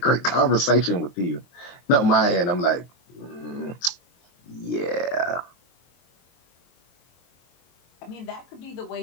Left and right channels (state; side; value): late; right; 23 ms